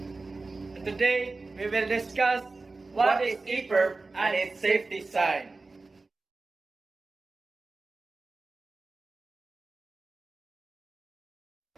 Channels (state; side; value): quieter; left; 3.6 dB